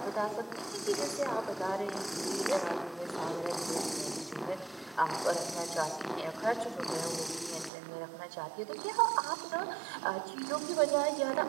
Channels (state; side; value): drops out; left; at 7.7 s